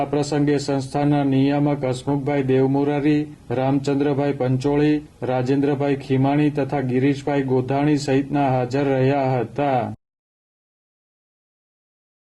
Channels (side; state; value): both; identical; correlation 1.00